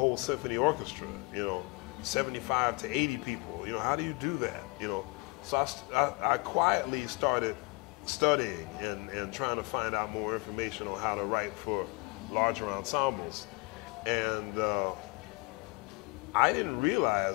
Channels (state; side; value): quieter; right; 27.2 dB